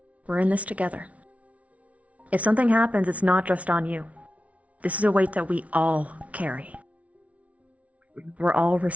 We're in this together. If something happens, it's not just on you. This is a weight that we all carry. We're all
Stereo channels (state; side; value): late; left; 0.066 ms